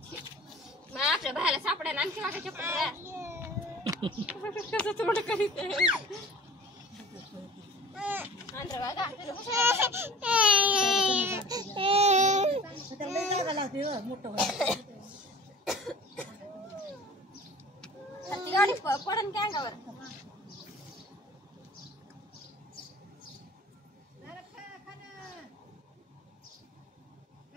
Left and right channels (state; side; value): normal; both; correlation 0.42